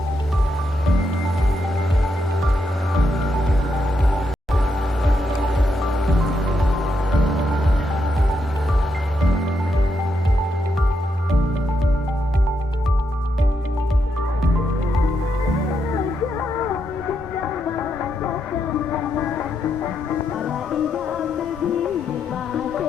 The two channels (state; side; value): normal; both; correlation 0.81